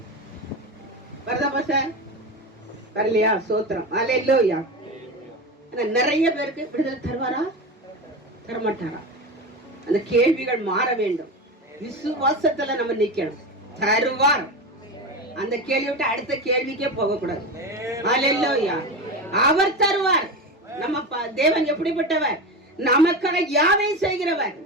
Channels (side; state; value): both; normal; correlation 0.22